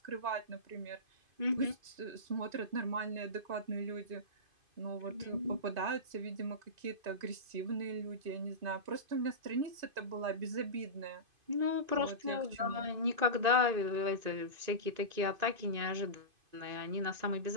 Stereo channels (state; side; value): late; left; 2.5 ms